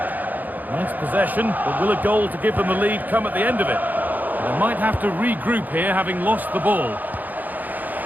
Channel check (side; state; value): left; late; 0.083 ms